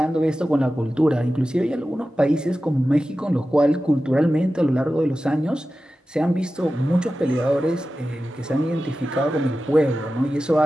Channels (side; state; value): both; normal; correlation 0.94